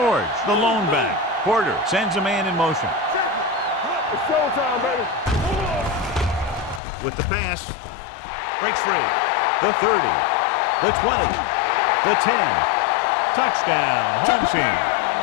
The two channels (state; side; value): drops out; right; at 6.8 s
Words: the lone back. Porter sends a man in motion. It's showtime, baby. With the pass, breaks free. The 30, the 20, the 10. Touchdown, home team.